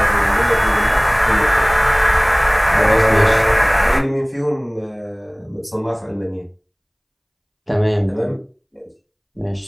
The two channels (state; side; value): identical; both; correlation 1.00